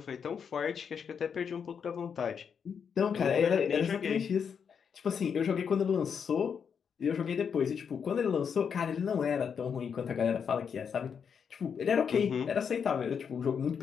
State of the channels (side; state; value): right; quieter; 6.9 dB